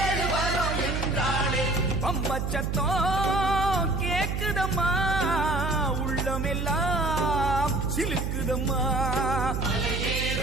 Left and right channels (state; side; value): noise; right; hum, 1 dB below the sound